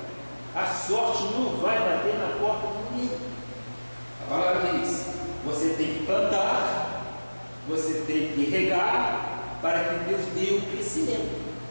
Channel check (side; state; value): both; inverted; correlation -1.00